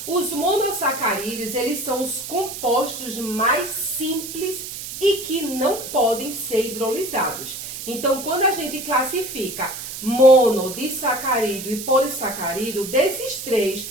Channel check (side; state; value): right; noise; hiss, 9 dB below the sound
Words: Os monossacarídeos, eles são os compostos mais simples e que não podem ser hidrolisados. Então, quando a gente classifica mono, disacarídeo e polissacarídeo, desses três,